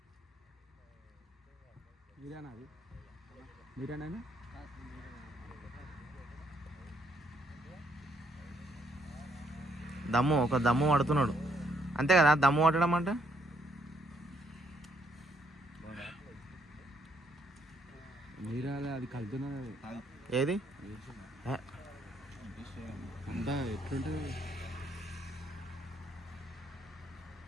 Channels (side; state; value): both; normal; correlation 0.71